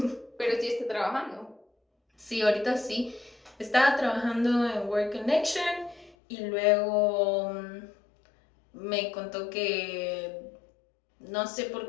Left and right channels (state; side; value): drops out; right; at 6.2 s